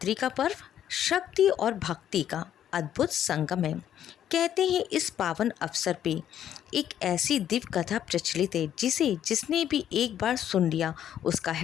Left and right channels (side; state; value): right; quieter; 10.4 dB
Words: का पर्व शक्ति और भक्ति का अद्भुत संगम है। कहते हैं इस पावन अवसर पे एक ऐसी दिव्य कथा प्रचलित है जिसने भी एक बार सुन लिया उसका